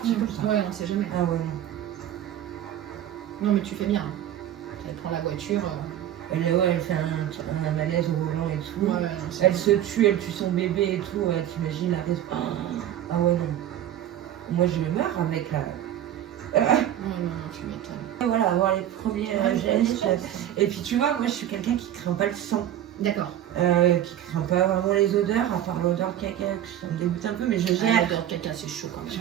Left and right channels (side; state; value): left; quieter; 11.4 dB